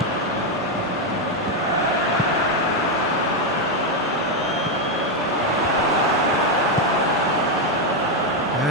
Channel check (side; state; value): both; normal; correlation 0.04